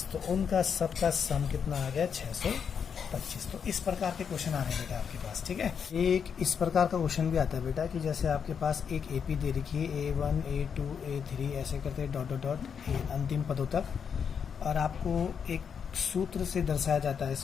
तो उनका सबका सम कितना आ गया 625। तो इस प्रकार के क्वेश्चन आ रहे हैं बेटा आपके पास। ठीक है, एक इस प्रकार का क्वेश्चन भी आता है बेटा कि जैसे आपके पास एक एपी दे रखी है, A1 A2 A3 ऐसे करते डॉट डॉट डॉट अंतिम पदों तक, और आपको एक सूत्र से दर्शाया जाता है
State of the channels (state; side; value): quieter; right; 7.0 dB